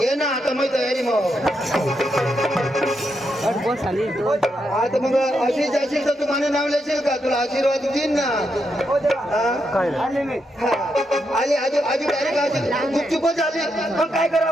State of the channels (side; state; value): both; normal; correlation 0.82